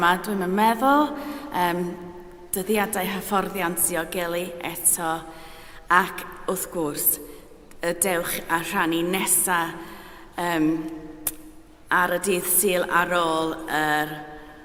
dwi'n meddwl. Dyddiadau hyfforddiant diogelu eto. Ac wrth gwrs, y dewch a rhannu nesaf ar y dydd Sul ar ôl yr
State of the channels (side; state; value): both; identical; correlation 1.00